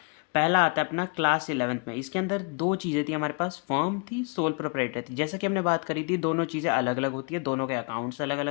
पहला आता है अपना क्लास 11th में। इसके अंदर दो चीज़ें थी हमारे पास, फर्म थी, सोल प्रोप्राइटर थी। जैसा कि हमने बात करी थी, दोनों चीज़ें अलग अलग होती है, दोनों के अकाउंट्स अलग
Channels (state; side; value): quieter; right; 34.0 dB